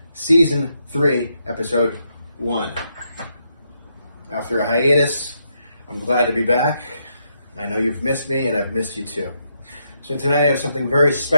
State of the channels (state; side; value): inverted; both; correlation -0.79